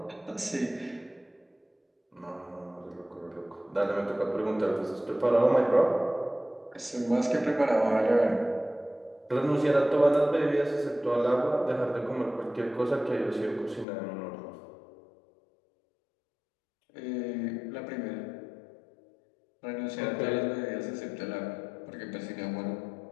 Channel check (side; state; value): right; drops out; at 13.9 s